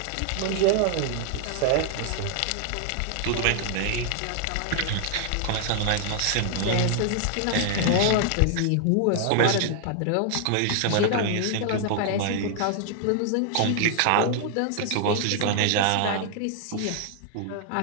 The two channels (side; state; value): both; different; correlation 0.00